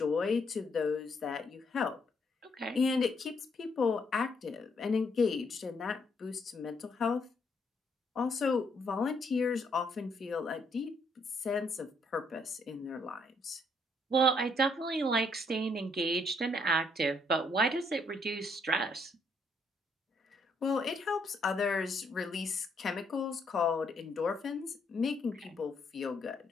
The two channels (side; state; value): both; normal; correlation 0.71